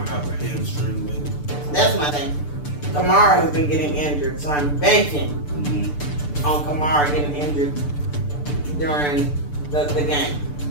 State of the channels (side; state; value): right; late; 6.8 ms